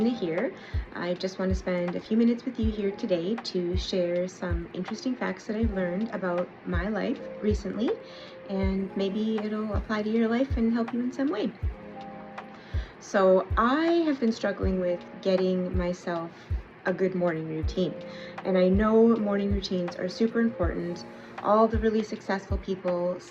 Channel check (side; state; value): both; identical; correlation 1.00